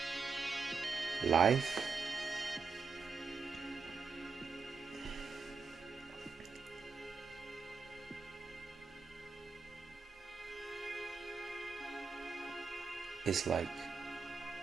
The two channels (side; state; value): left; quieter; 5.0 dB